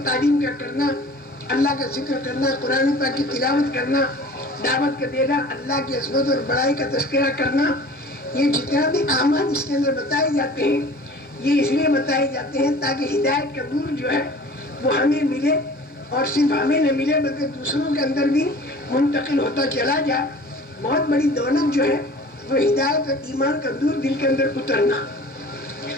تعلیم کا کرنا، اللہ کا ذکر کرنا، قرآن پاک کی تلاوت کرنا، دعوت کا دینا، اللہ کی عظمت اور بڑائی کا تذکرہ کرنا، یہ جتنا بھی اعمال اس کے اندر بتائے جاتے ہیں، یہ اس لیے بتائے جاتے ہیں تاکہ ہدایت کا نور جو ہے وہ ہمیں ملے، اور صرف ہمیں نہ ملے بلکہ دوسروں کے اندر بھی منتقل ہوتا چلا جائے۔ بہت بڑی دولت جو ہے وہ ہدایت اور ایمان کا نور دل کے اندر اترنا۔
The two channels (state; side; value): normal; both; correlation 0.44